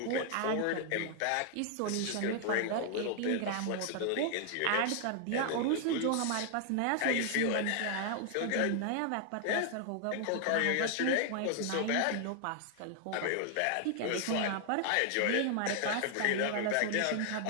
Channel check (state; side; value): different; both; correlation 0.00